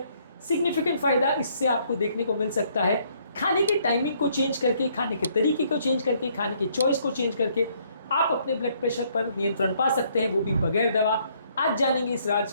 सिग्निफिकेंट फायदा इससे आपको देखने को मिल सकता है। खाने की टाइमिंग को चेंज करके, खाने के तरीके को चेंज करके, खाने की चॉइस को चेंज करके आप अपने ब्लड प्रेशर पर नियंत्रण पा सकते हैं, वो भी बगैर दवा। आज जानेंगे इस राज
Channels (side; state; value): both; inverted; correlation -0.67